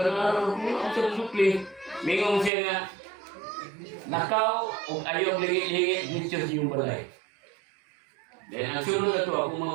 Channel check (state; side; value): drops out; left; at 2.5 s